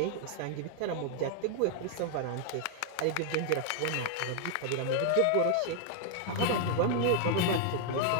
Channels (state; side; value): different; both; correlation 0.00